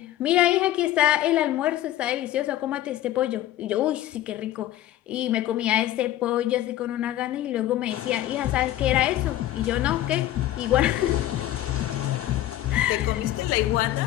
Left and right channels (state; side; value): quieter; right; 13.6 dB